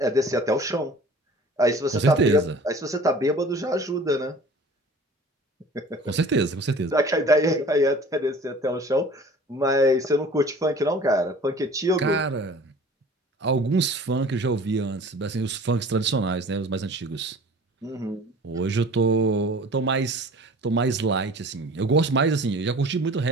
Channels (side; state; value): both; normal; correlation 0.45